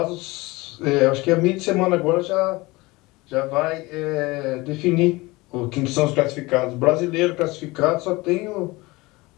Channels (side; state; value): right; quieter; 22.2 dB